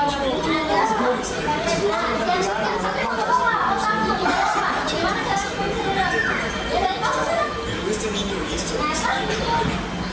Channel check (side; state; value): both; identical; correlation 1.00